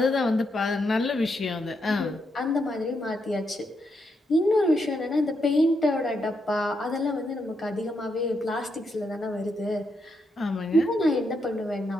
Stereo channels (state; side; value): normal; both; correlation 0.80